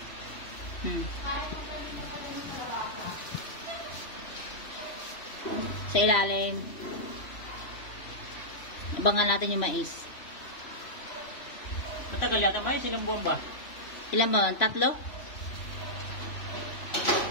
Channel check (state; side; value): late; right; 3.0 ms